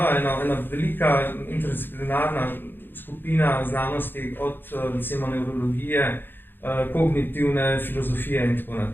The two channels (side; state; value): right; late; 0.098 ms